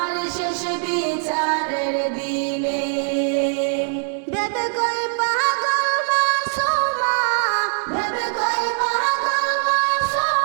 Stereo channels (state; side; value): silent; left; 65 dB below the other